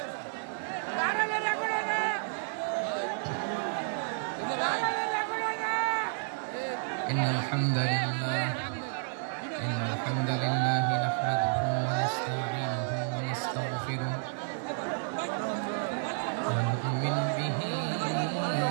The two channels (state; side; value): silent; left; digital silence